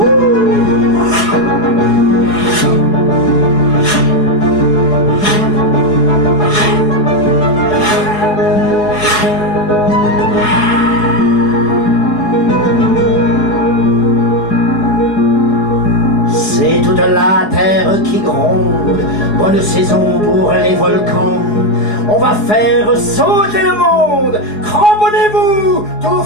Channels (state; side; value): late; right; 4.8 ms